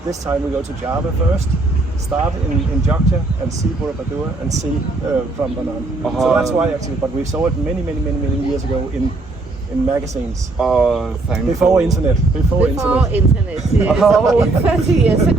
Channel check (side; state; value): left; quieter; 3.1 dB